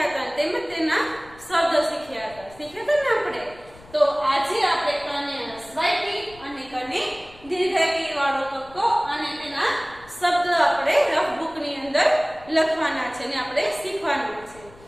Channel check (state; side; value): noise; left; rumble, 23 dB below the sound